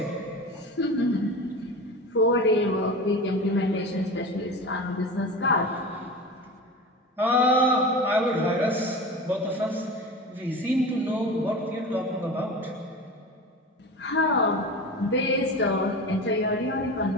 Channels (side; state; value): both; normal; correlation 0.31